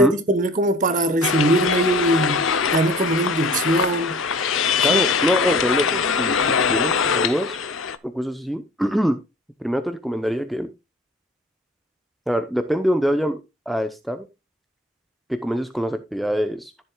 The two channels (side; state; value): both; normal; correlation 0.48